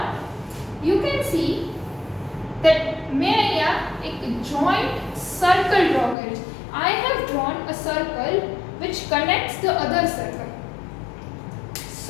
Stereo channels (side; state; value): right; drops out; at 6.2 s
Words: you can see that मैं यहाँ एक joint circle draw करी. I have drawn a circle which connects the other circle.